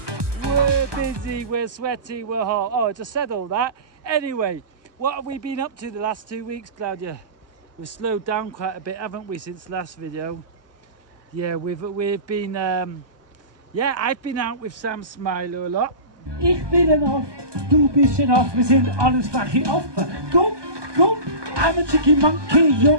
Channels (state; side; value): late; left; 1.2 ms